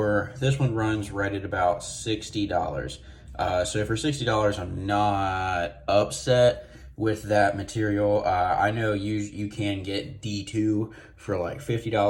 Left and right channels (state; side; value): identical; both; correlation 1.00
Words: this one, runs right at about $60. So for $60, I'm not upset with that material. I know you can get D2 for like